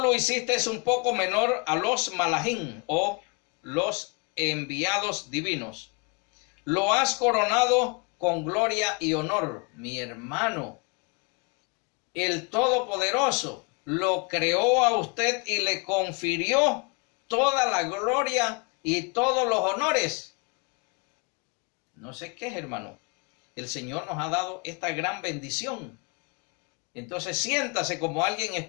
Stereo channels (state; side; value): quieter; right; 32.6 dB